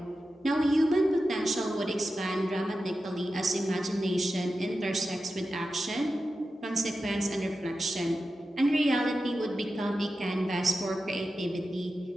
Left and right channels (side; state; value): both; normal; correlation 0.92